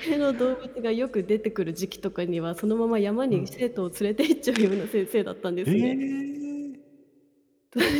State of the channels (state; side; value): identical; both; correlation 1.00